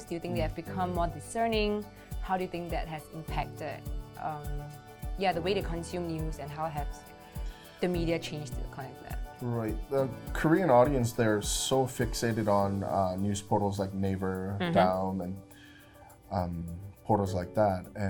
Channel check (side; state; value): both; identical; correlation 1.00